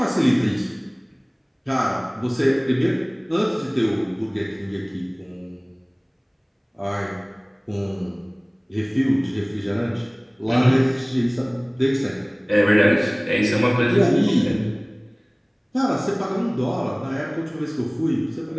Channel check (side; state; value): both; identical; correlation 1.00